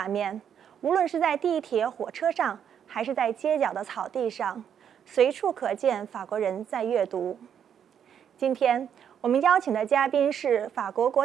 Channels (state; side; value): quieter; left; 8.5 dB